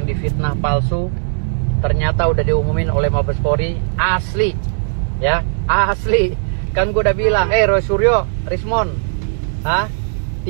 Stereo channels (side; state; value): left; silent; digital silence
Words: difitnah palsu ternyata udah diumumin oleh Mabes Polri asli, ya asli. Kan gue udah bilang, Roy Suryo, Rismon,